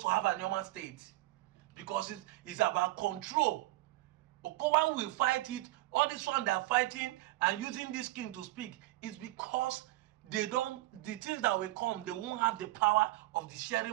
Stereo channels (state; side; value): quieter; left; 18.6 dB